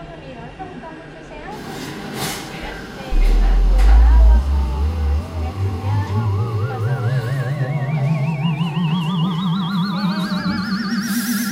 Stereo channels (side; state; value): both; identical; correlation 1.00